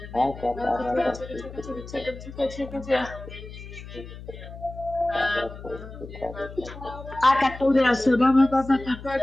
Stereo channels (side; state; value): left; noise; hum, 13 dB below the sound